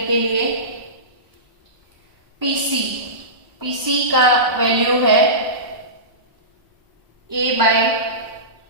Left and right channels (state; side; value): late; left; 1.0 ms